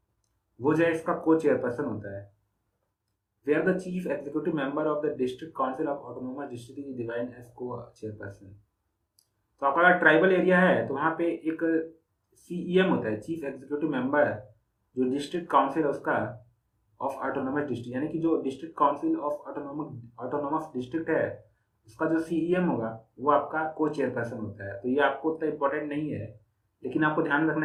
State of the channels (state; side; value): identical; both; correlation 1.00